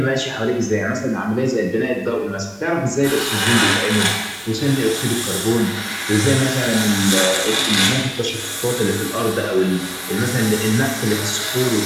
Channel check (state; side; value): identical; both; correlation 1.00